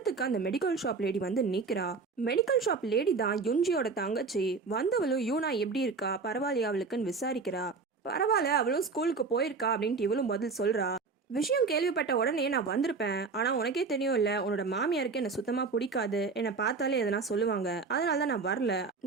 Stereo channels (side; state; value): left; quieter; 4.5 dB